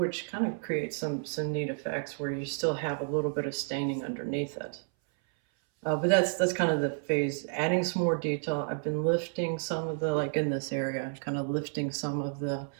kind of creates some neat effects where you still have a little bit of staining underneath it. But that's kind of the phase, adding some more detail. I've been lifting some of the, like in this area, kind of lifting some of the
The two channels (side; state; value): left; silent; 57 dB below the other